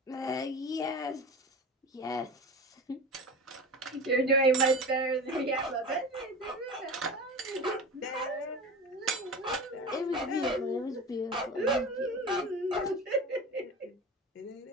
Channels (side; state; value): both; normal; correlation 0.31